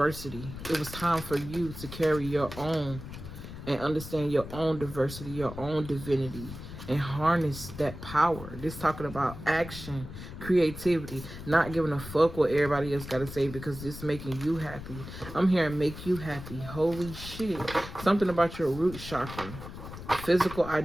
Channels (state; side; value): noise; left; rumble, 11 dB below the sound